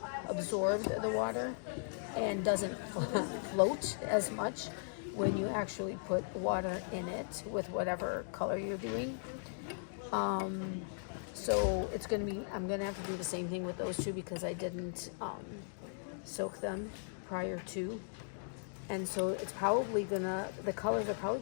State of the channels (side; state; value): right; silent; digital silence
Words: absorbed the water and doesn't float as much when you actually put water in it with whatever color you're doing. So it's going to be, I'm going to have to do the same thing with those 2 because I didn't soak them prior to. And so it's probably the colors are probably